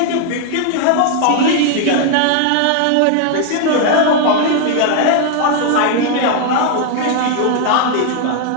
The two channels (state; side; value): different; both; correlation 0.00